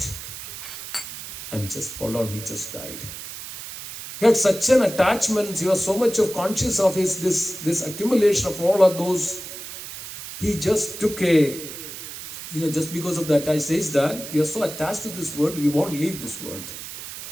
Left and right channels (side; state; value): right; noise; hiss, 11 dB below the sound